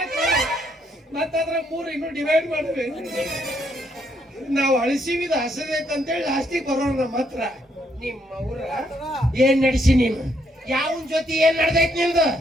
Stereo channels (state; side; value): normal; both; correlation 0.73